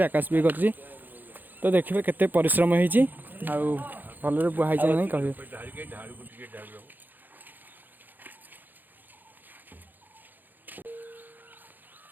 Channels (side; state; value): left; late; 0.087 ms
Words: आकाश भी कर तो देखिए केते परिश्रम होती भल बुहाई नहीं कहे